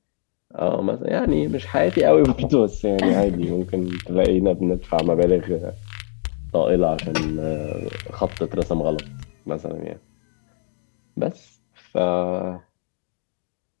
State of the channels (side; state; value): right; silent; digital silence